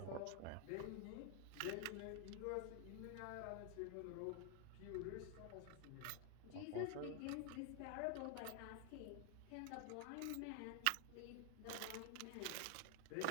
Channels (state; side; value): different; both; correlation 0.00